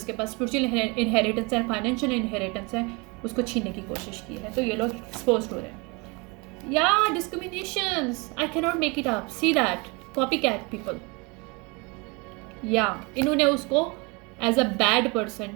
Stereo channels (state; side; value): quieter; left; 28.4 dB